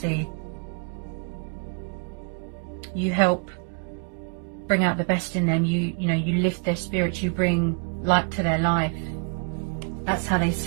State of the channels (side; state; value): left; quieter; 37.3 dB